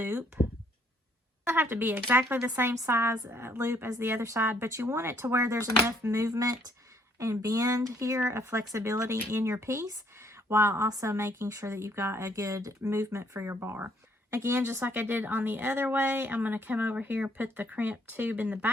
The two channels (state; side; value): normal; both; correlation 0.66